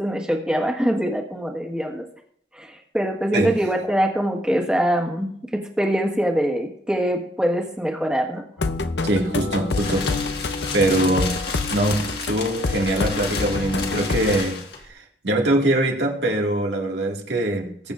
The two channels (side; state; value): both; normal; correlation 0.65